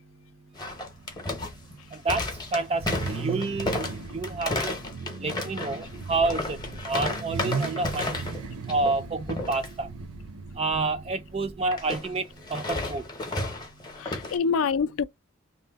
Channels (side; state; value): both; normal; correlation 0.21